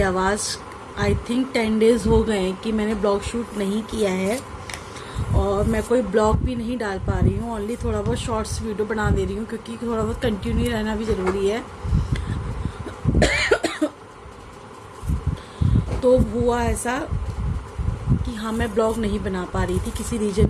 आवाज़ आई थिंक 10 डेज़ हो गए हैं कि मैंने ब्लॉग शूट नहीं किया है और मैं कोई ब्लॉग भी नहीं डाल पा रही हूँ। ओनली थोड़ा बहुत शॉर्ट्स वीडियो बना दे रही हूँ क्योंकि थोड़ा बहुत कंटिन्यू रहना भी ज़रूरी है। तो हुआ ऐसा कि हाँ, मैं ब्लॉग नहीं बना पा रही थी किसी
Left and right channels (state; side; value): identical; both; correlation 1.00